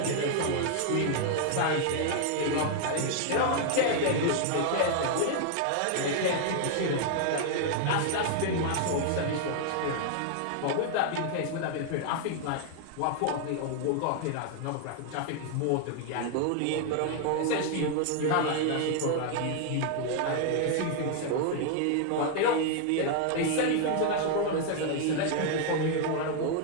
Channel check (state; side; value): different; both; correlation 0.00